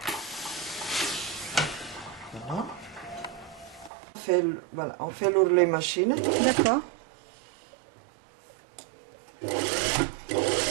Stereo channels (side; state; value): left; drops out; at 3.9 s